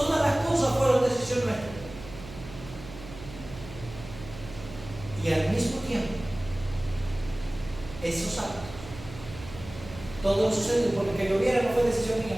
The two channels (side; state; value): right; noise; hum, 14 dB below the sound